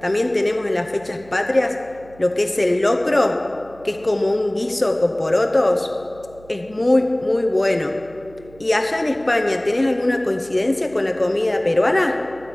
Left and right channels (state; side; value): noise; right; hum, 24 dB below the sound